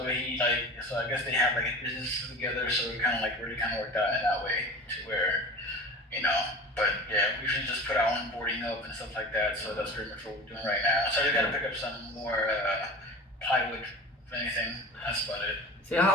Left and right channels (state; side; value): normal; both; correlation 0.36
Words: I guess they have like a business together, so we kind of like really kind of worked out in that way to where you know. But yeah, we usually just put our own boarding up and stuff like that. So that's pretty much what we're doing right now. So I just got to pick up some more plywood, if anything. That's about it. See,